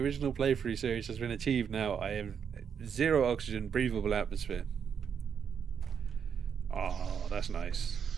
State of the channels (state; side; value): quieter; left; 7.3 dB